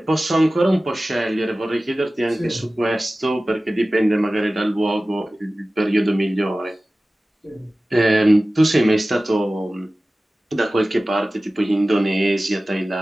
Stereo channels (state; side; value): normal; both; correlation 0.96